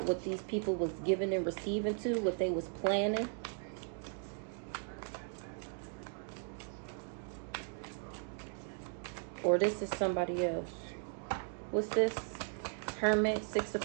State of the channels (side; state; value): left; silent; 53 dB below the other